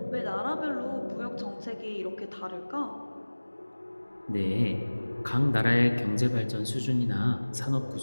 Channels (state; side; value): inverted; both; correlation -1.00